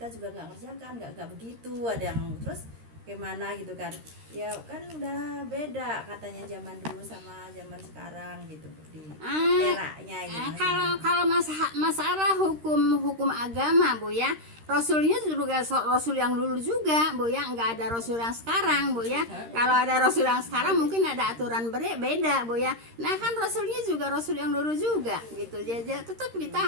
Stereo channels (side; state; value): left; late; 13 ms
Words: juga enggak kerjakan, enggak begitu. Ada yang terus gimana gitu kan, ya kan udah beda katanya zaman dulu sama zaman sekarang gitu di eranya gitu. Kalau masalah hukum agama Bu ya, Rasulnya juga Rasul yang dulu juga Bu ya, nggak ada Rasul yang sekarang Bu ya. Kalau ada Rasul yang sekarang mungkin ada aturan beda Bu ya. Nah kan Rasulnya juga Rasul yang dulu juga gitu. Jadi tetap kita